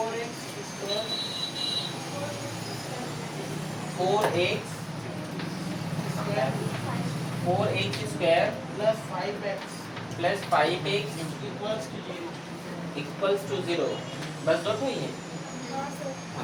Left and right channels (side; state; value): both; identical; correlation 1.00